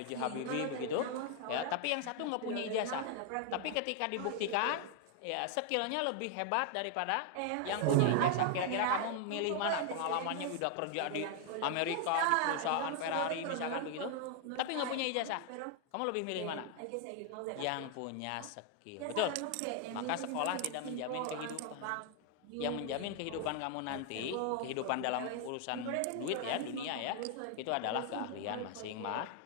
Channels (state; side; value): different; both; correlation 0.00